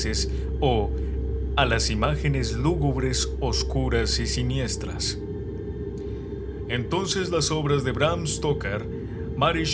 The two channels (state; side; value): identical; both; correlation 1.00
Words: o a las imágenes lúgubres, oscuras y siniestras. Entonces las obras de Bram Stoker, Mary